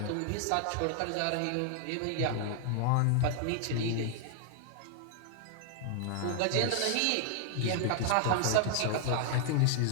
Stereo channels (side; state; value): both; different; correlation 0.00